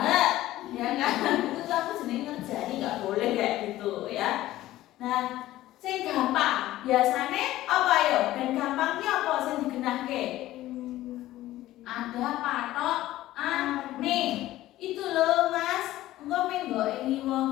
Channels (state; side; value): quieter; right; 15.3 dB